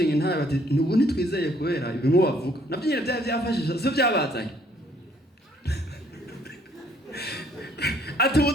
intare bati nubu nitwizeye kubera ibimwe bavuga navyo nyine byafashije so byabazanye ati ubu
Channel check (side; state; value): both; normal; correlation 0.63